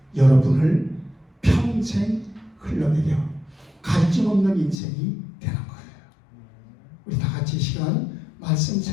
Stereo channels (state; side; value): drops out; right; at 4.8 s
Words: 여러분을 평생 흘러내려 갈증 없는 인생이 되는 거예요. 우리 다 같이 시간 말씀